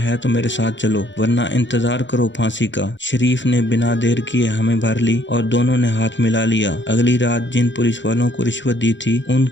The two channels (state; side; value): late; right; 0.53 ms